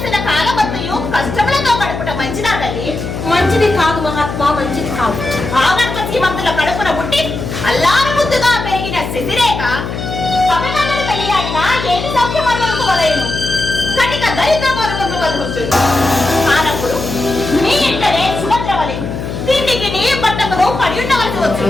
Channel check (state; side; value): noise; left; hum, 6 dB below the sound